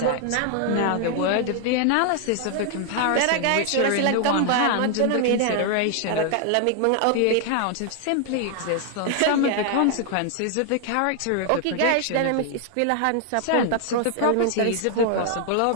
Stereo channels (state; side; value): different; both; correlation 0.00